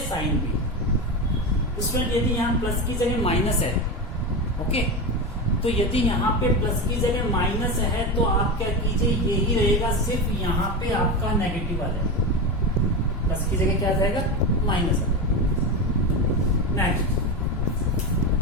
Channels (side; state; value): both; normal; correlation 0.19